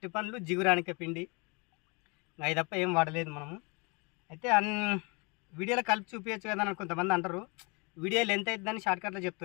పండ్లు, జిగురానిక పిండి, అవి తప్ప ఏం వాడలేదు మనము. అయితే వీడియోలో కలిపి చూపించచ్చు కదా అని కొంతమంది అంటారు. వీడియోలు ఎంత అవుతుందని షార్ట్కట్లో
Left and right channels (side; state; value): right; quieter; 30.7 dB